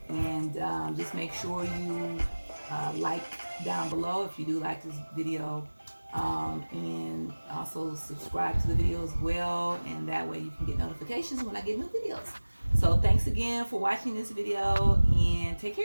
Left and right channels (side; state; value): both; inverted; correlation -1.00